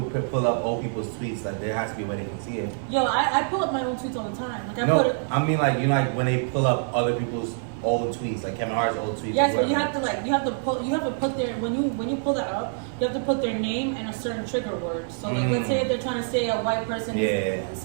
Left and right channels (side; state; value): left; silent; digital silence